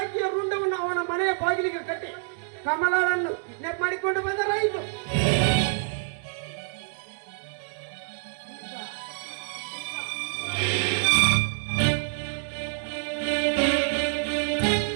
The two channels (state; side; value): silent; left; digital silence